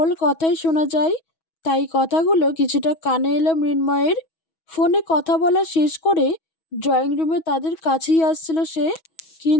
কথাই শোনা যায়, তাই কথাগুলো কিছুটা কানে এলো মৃন্ময়ের। ফোনে কথা বলা শেষ করে ড্রয়িং রুমে তাদের কাছেই আসছিল সে,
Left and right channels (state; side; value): late; right; 6.2 ms